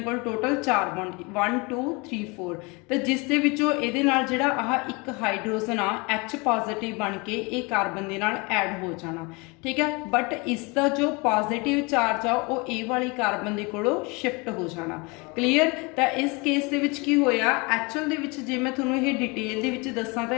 कोल? Total 4 bond, 1 2 3 4। तो जिस दे विचों इहदे नाल जिहड़ा आह एक हाइड्रोजन आ H पॉजिटिव बन के ये कार्बन दे नाल ऐड हो जाना। ठीक है, बट इसका जो पॉजिटिव चार्ज आ वो ए वाली कार्बन दे कोलों शिफ्ट हो जाना। क्लीयर। तो इस केस दे विच की होया? एक्चुअल दे विच जे मैं तुहानूं ये डिटेल दे विच दस्सां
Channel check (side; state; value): right; quieter; 28.0 dB